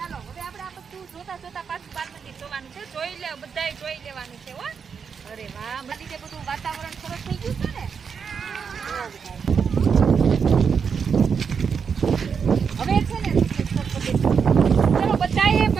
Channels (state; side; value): quieter; left; 6.4 dB